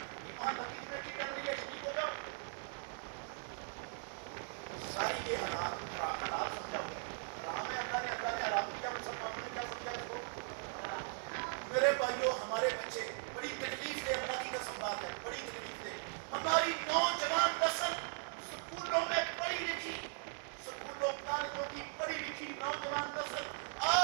وہاں لکی کمیٹی ڈل رہی ہے، شریک ہو جاؤ. ساری یہ حالات سمجھا ہوا ہے. حرام ہے، اللہ نے حرام کیا، مسلمانوں نے کیا سمجھا اس کو؟ میرے بھائیوں ہمارے بچے بڑی تکلیف دے، اللہ کی قسم بات ہے، بڑی تکلیف دے. ہماری نوجوان نسل سکولوں میں پڑھی لکھی، سکولوں کالجوں کی پڑھی لکھی نوجوان نسل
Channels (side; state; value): left; silent; 52 dB below the other